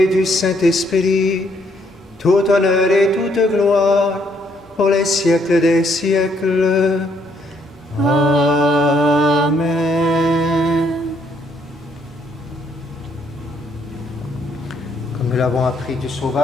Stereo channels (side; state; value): both; normal; correlation 0.70